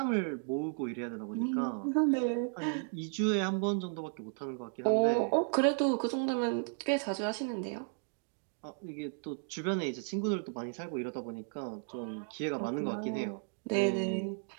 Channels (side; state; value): left; silent; 55 dB below the other